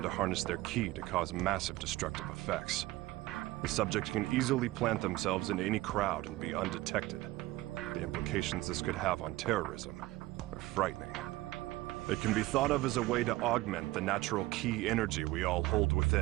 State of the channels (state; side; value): quieter; left; 18.4 dB